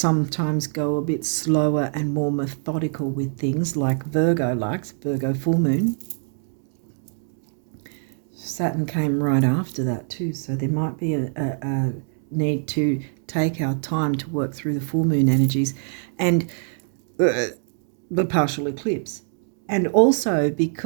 go a bit slower and more methodical with things, like Virgo likes, Virgo full moon. Saturn came right after that too, so there might be a need to take our time to work through the full moon energies and the partial eclipse. And also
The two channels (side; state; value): left; silent; 63 dB below the other